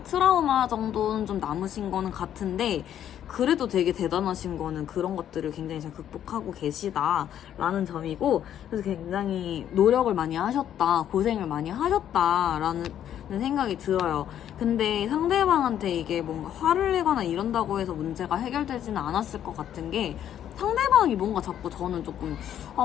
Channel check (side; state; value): right; quieter; 10.4 dB